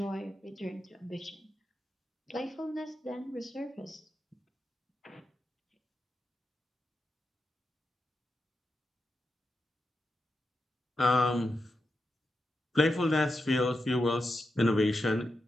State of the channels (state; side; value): normal; both; correlation 0.88